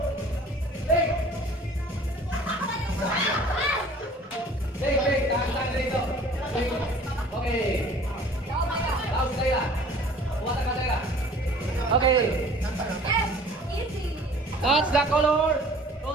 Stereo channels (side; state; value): both; normal; correlation 0.49